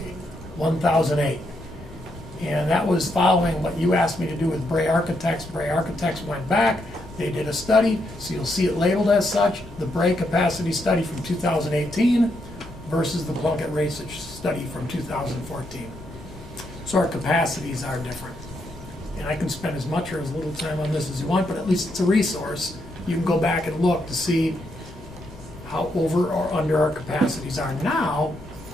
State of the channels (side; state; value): left; noise; rumble, 18 dB below the sound